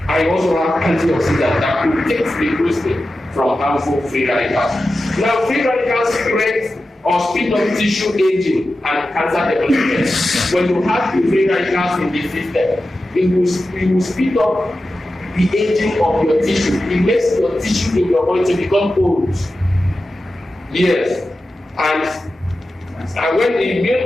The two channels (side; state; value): both; normal; correlation 0.93